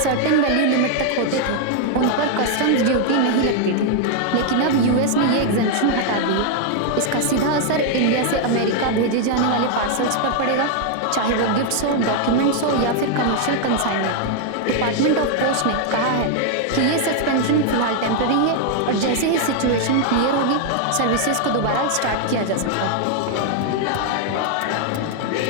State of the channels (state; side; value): different; both; correlation 0.00